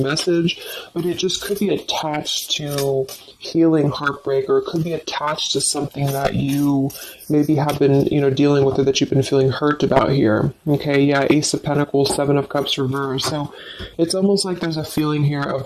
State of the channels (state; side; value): identical; both; correlation 1.00